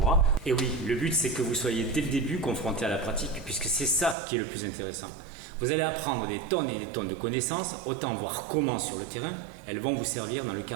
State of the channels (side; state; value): left; drops out; at 4.2 s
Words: Et oui, le but c'est que vous soyez dès le début confronté à la pratique, puisque c'est ça qui est le plus intéressant. Vous allez apprendre des tonnes et des tonnes de connaissances, autant voir comment sur le terrain, elles vont vous servir dans le